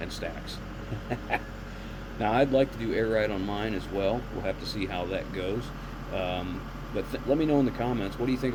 stacks. Now, I'd like to do air ride on mine as well. We'll have to see how that goes. But let me know in the comments, what do you think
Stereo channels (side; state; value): both; identical; correlation 1.00